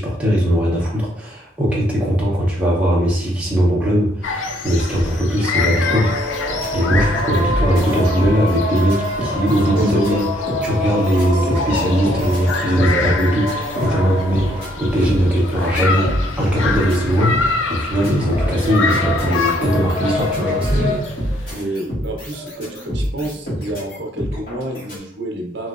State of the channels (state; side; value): normal; both; correlation 0.69